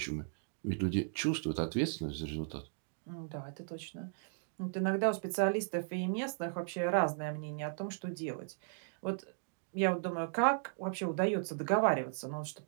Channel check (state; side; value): silent; left; digital silence